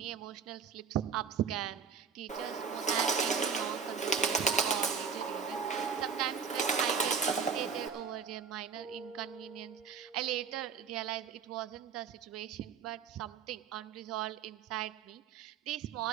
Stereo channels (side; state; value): left; quieter; 6.2 dB